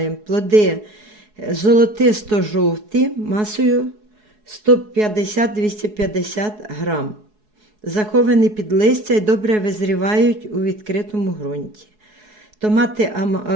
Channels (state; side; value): late; left; 4.7 ms